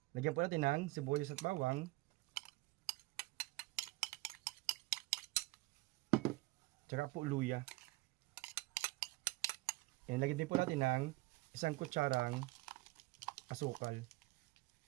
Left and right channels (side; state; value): left; quieter; 21.0 dB